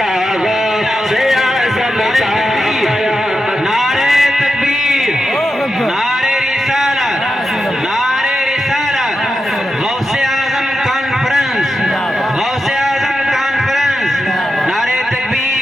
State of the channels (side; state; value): both; normal; correlation 0.89